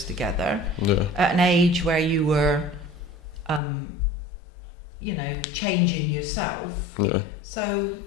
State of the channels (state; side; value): drops out; right; at 3.6 s